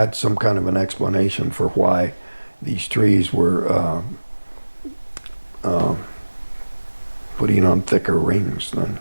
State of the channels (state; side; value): inverted; both; correlation -1.00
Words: some kind of an explanation for why these trees were putting on thicker rings than